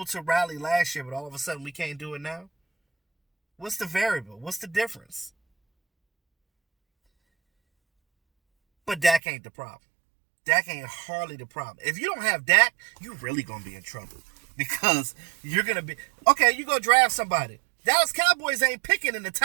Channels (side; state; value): left; drops out; at 9.2 s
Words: to rally last year, but all of a sudden we can't do it now? What's the variable? What's the difference? But Dak ain't the problem. Dak ain't hardly the problem. If you don't have Dak, you really going to be in trouble. Because you're going to be... Okay, you go draft somebody. Dallas Cowboys ain't picking in the